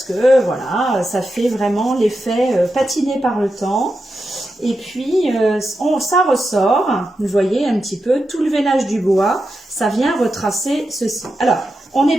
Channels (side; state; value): both; normal; correlation 0.88